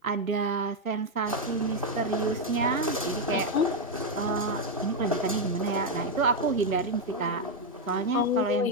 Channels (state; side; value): normal; both; correlation 0.03